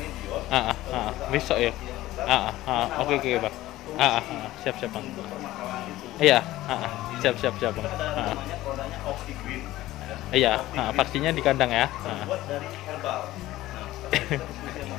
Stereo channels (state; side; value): quieter; right; 16.2 dB